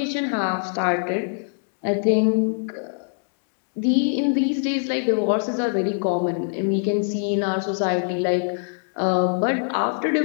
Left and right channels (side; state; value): right; silent; digital silence